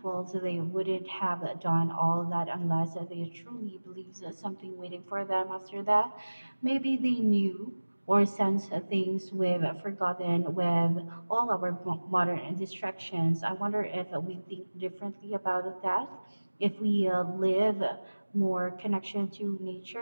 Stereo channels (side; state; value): both; inverted; correlation -1.00